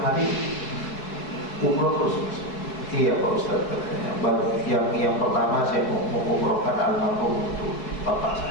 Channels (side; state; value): right; late; 4.7 ms